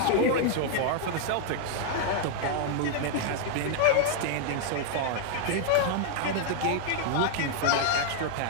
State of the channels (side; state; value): both; different; correlation 0.00